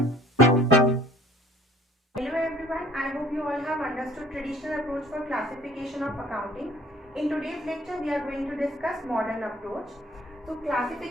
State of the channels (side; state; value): both; normal; correlation 0.53